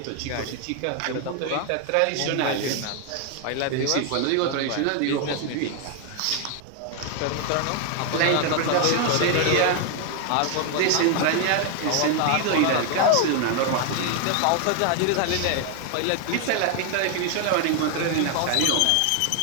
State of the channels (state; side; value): different; both; correlation 0.00